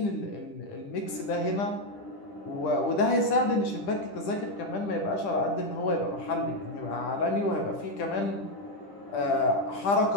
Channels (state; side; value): late; right; 10 ms